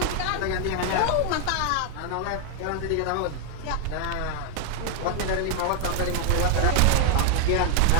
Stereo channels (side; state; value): both; different; correlation 0.00